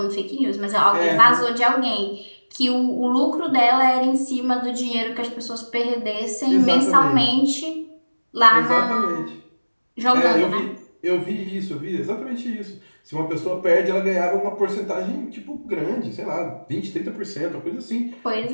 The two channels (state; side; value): inverted; both; correlation -1.00